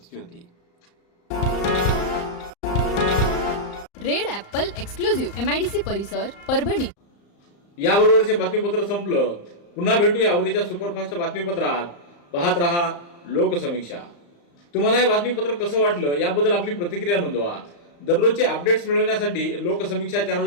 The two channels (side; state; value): right; late; 35 ms